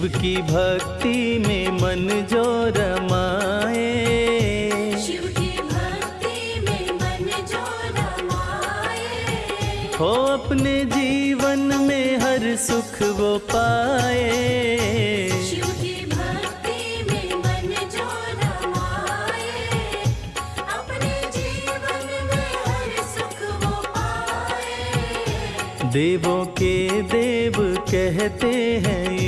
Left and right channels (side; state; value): both; identical; correlation 1.00